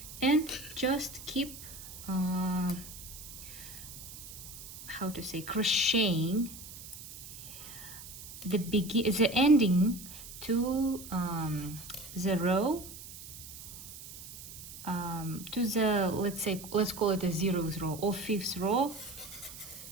and just keep how to say, crocheting the ending to the row, to the, let's call it a 0th row or 5th row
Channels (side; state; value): right; noise; hiss, 13 dB below the sound